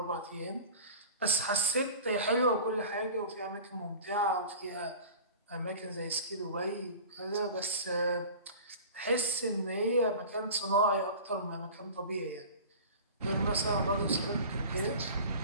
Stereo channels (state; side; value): inverted; both; correlation -0.38